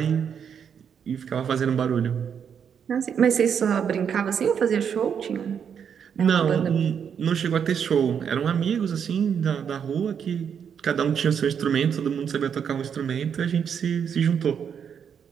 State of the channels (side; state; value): left; quieter; 7.6 dB